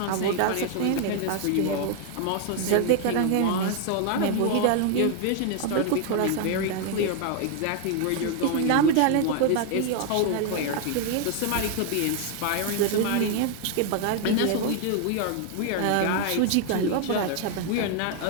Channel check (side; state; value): both; different; correlation 0.00